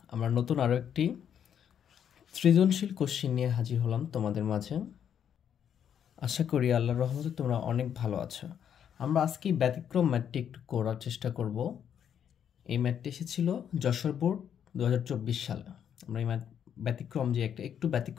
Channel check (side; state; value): right; quieter; 8.8 dB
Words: আমরা নতুন আরও একটি সৃজনশীল কোশ্চিন নিয়ে হাজির হলাম তোমাদের মাঝে। আশা করি আল্লাহর রহমতে তোমরা অনেক ভালো আছো। আমরা আজকে ব্যতিক্রম ম্যাথটি একটু করার চেষ্টা করব। এই ম্যাথটি এসেছিল যশোর বোর্ড 2024 সালে। আমরা এই ম্যাথ ব্যতিক্রম যে একটু